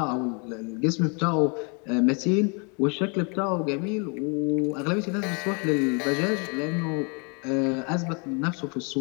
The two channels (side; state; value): right; quieter; 35.0 dB